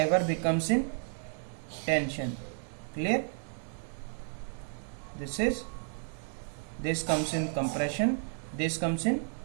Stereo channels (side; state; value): left; silent; 56 dB below the other